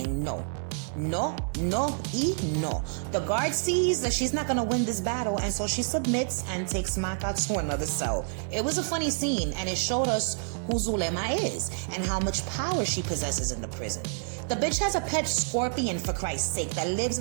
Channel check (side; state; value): left; silent; digital silence